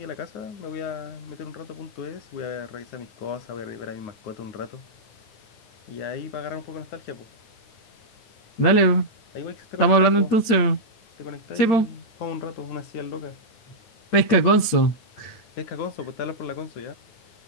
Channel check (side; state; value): right; late; 8.7 ms